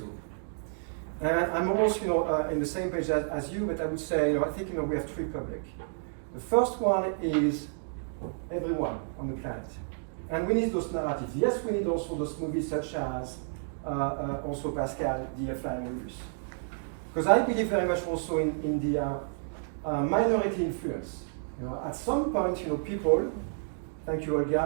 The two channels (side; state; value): left; silent; digital silence